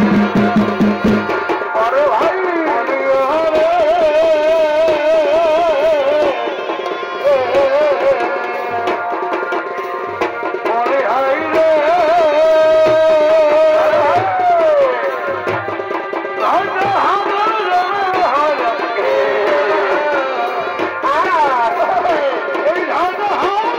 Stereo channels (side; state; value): both; identical; correlation 1.00